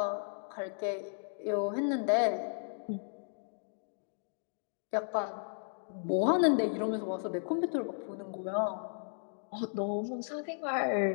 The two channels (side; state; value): right; silent; digital silence